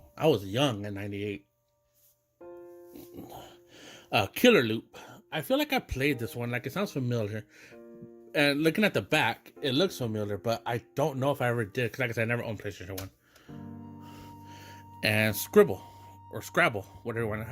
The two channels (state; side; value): identical; both; correlation 1.00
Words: I was young in 98. Killer Loop. I feel like I played this one. Like, it sounds familiar. And looking at the back, it looks familiar, but I don't know if I ever did. Because like I said, I never owned PlayStation 1. And Scribble. Or Scrabble.